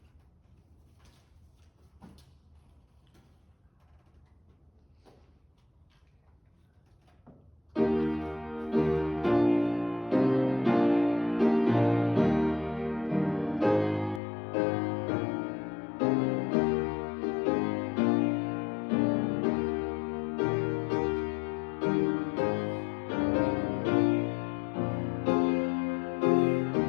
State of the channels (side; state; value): right; drops out; at 14.2 s